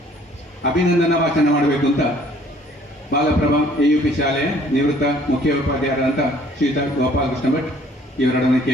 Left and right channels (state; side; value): normal; both; correlation 0.57